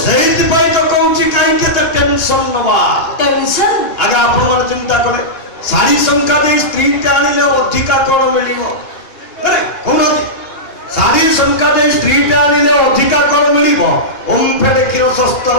सेहित पई तो कहूची काई के त टेंशन नबा। टेंशन आगे आपण मन चिंता करे सारी संख्या दे स्त्री के आनिले अधिका कोन मिलिबो। अरे कोन सारी संख्या दे स्त्री के आनिले अधिका कोन मिलिबो। ओम फेडे किरो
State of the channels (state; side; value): late; right; 2.8 ms